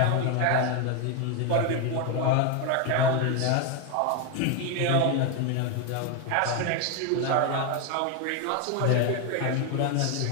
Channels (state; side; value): different; both; correlation 0.01